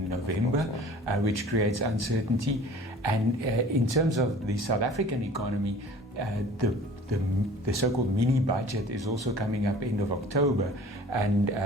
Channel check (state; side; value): normal; both; correlation 0.46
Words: November, which creates uncertainty. And in terms of the South African economy, the so-called mini budget is also coming up end of October, and